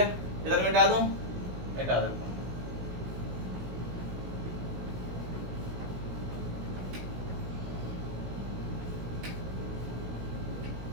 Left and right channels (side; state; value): left; late; 16 ms